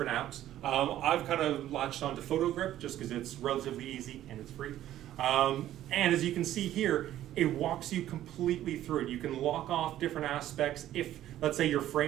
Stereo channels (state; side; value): quieter; left; 12.8 dB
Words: apps. I've kind of latched onto PhotoGrip just because it's relatively easy and it's free. And as you can see here, it walks you completely through it. You can lock off different aspects. If, let's say, your